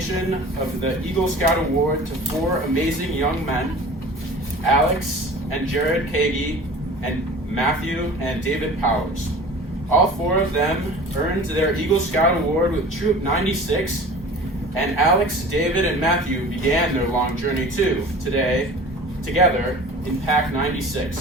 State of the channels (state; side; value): normal; both; correlation 0.41